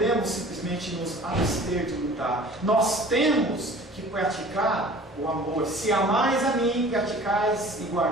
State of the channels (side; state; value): both; normal; correlation 0.45